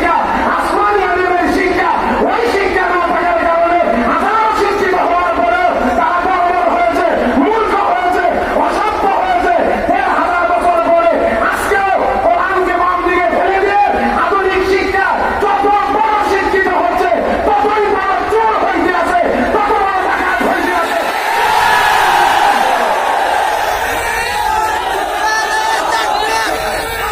আসমানি আলিমের শিক্ষা। ওই শিক্ষা না থাকার কারণে হাজারো শিক্ষিত হওয়ার পরেও তারা বর্বর হয়েছে, মূর্খ হয়েছে, অসভ্য হয়েছে। ১,৫০০ বছর পরে আজকেও কোরআনকে বাম দিকে ফেলে দিয়ে আধুনিক শিক্ষা যত বড় শিক্ষিত হচ্ছে, ততই বড় চোর হইতে আছে, তত বড় ডাকাত হইতে আছে।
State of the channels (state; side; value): identical; both; correlation 1.00